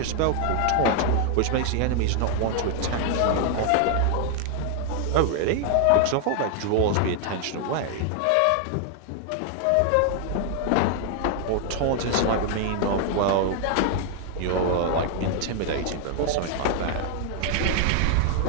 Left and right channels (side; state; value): both; different; correlation 0.00